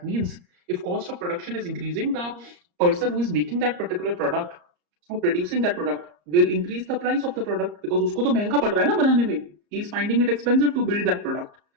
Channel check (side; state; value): left; late; 34 ms